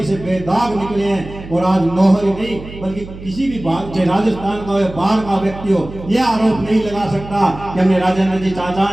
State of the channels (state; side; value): noise; right; hum, 14 dB below the sound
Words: से बेदाग निकले हैं। और आज नौहर नहीं बल्कि किसी भी चाहे राजस्थान का हो बाहर का व्यक्ति हो, यह आरोप नहीं लगा सकता कि हमने राजेंद्र जी चाचा